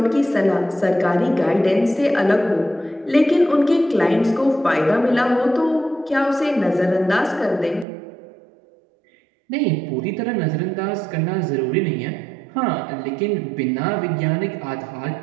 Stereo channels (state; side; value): drops out; left; at 7.9 s